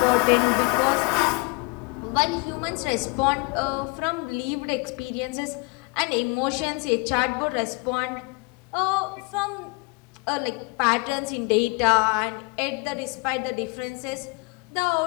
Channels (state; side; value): quieter; right; 28.6 dB